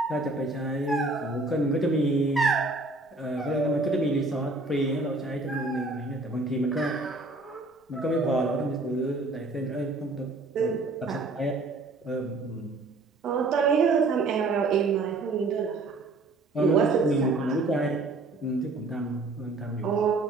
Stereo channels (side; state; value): left; quieter; 3.2 dB